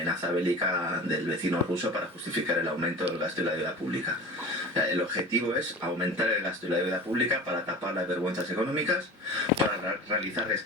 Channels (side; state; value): both; normal; correlation 0.35